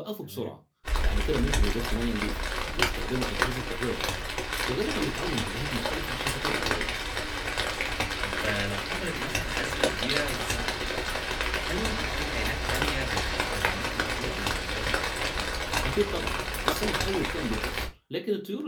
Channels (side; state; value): both; identical; correlation 1.00